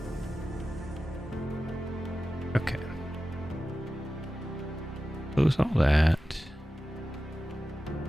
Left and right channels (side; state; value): both; normal; correlation 0.94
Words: Okay. Close all that.